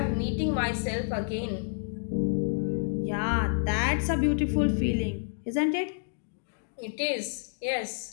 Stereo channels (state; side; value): silent; right; digital silence